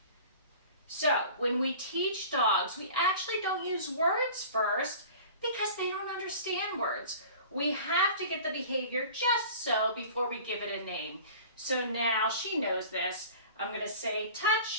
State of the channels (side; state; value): both; inverted; correlation -0.41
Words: So when we teach dogs, we actually don't use words first because they don't understand words. We have to get the behavior just so before we give it a name. So now she knows this. I'm going to say